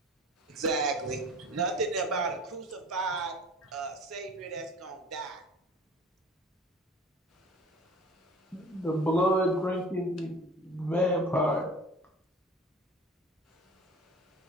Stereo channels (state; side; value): normal; both; correlation 0.42